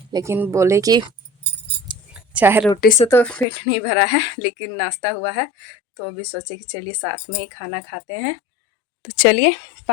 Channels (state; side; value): drops out; right; at 3.5 s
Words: लेकिन बोले कि चाय रोटी से तो पेट नहीं भरा है, लेकिन नाश्ता हुआ है, तो अभी सोचे कि चलिए साथ में ही खाना खाते हैं। तो चलिए